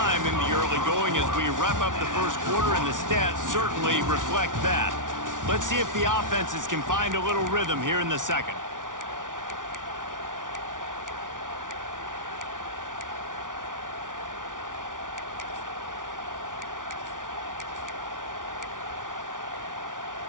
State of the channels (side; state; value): left; late; 0.88 ms